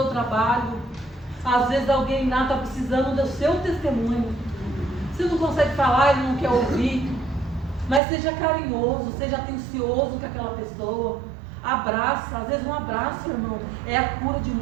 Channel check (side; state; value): left; drops out; at 8.0 s